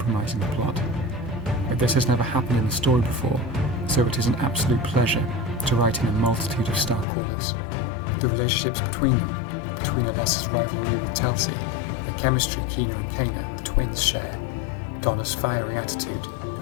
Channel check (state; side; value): drops out; right; at 7.1 s